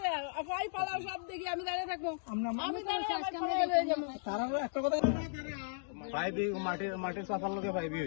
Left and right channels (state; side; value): silent; right; digital silence